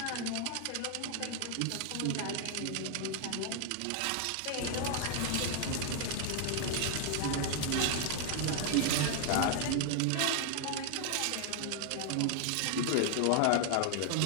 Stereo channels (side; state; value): both; different; correlation 0.00